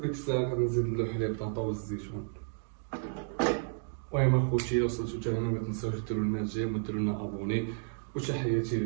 الساعه غنزيد له حليب طاطا والزيتون. المهم اخوتي لو وصلتو حتى هنا ما تنساوش ديروا لنا جيم وديروا لنا ابوني. وتحياتي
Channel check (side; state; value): left; silent; digital silence